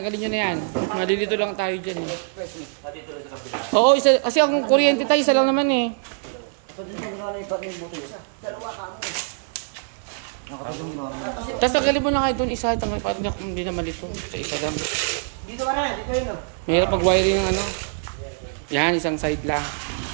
nyo na yan. Malilito lang tayo dyan eh. Oo, isa, kasi ang kuryente tayo, isa lang naman eh. Tapos tanggalin mo na kayo doon isa, parang hindi na malito. Sa isa lang. Dito ka na, dito yun. Mahirap mag-wiring ng Yan, isang side lang.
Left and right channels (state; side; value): silent; left; digital silence